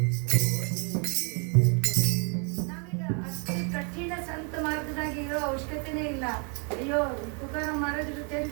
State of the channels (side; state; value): left; quieter; 37.2 dB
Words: ಅವಶ್ಯಕತೆನೇ ಇಲ್ಲ. ಅಯ್ಯೋ ತುಕಾರಾಮ್ ಮಹಾರಾಜರ